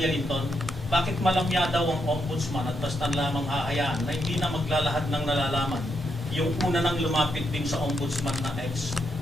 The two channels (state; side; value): normal; both; correlation 0.81